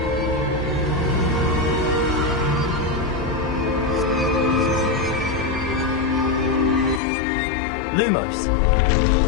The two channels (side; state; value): right; drops out; at 7.0 s